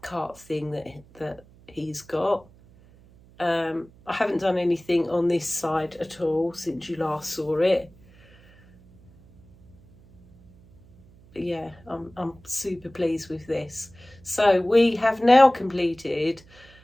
cart thing that he's got. I haven't done anything on this side at all since you last saw it. But yeah, I'm super pleased with this. So we have now completed,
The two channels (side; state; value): right; noise; hum, 26 dB below the sound